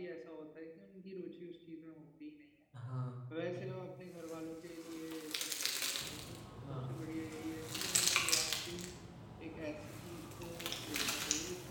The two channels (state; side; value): identical; both; correlation 1.00